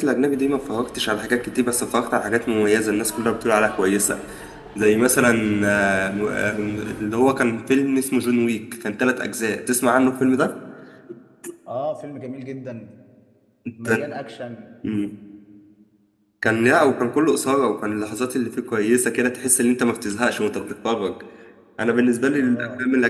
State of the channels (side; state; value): both; identical; correlation 1.00